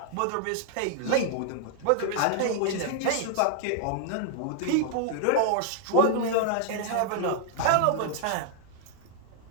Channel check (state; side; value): different; both; correlation 0.00